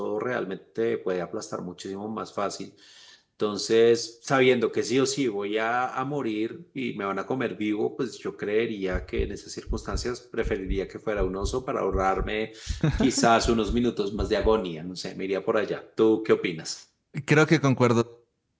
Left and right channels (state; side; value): identical; both; correlation 1.00